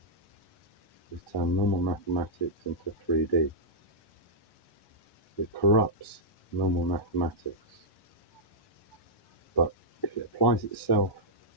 is turn normal mathematics into 3D. It corrupts normal mathematics. But if it applies itself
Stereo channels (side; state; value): right; late; 1.1 ms